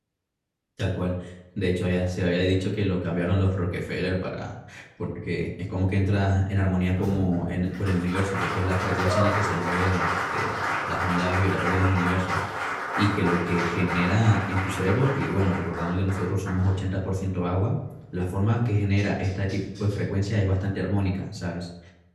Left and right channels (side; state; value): both; identical; correlation 1.00